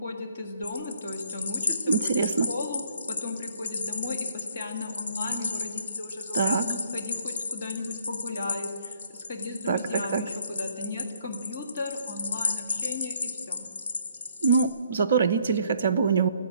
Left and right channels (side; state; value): both; inverted; correlation -0.64